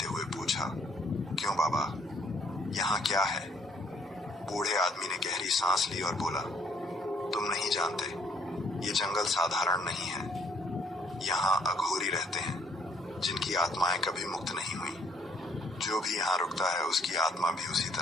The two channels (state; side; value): normal; both; correlation 0.65